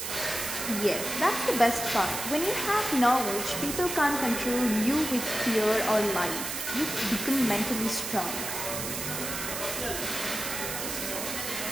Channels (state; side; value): noise; right; hiss, 5 dB below the sound